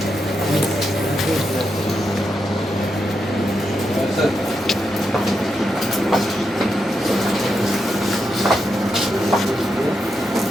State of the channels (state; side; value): normal; both; correlation 0.84